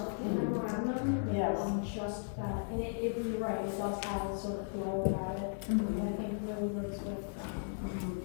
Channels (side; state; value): right; silent; digital silence